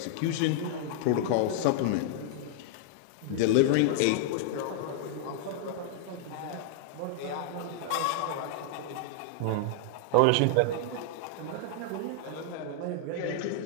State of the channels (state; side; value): different; both; correlation -0.01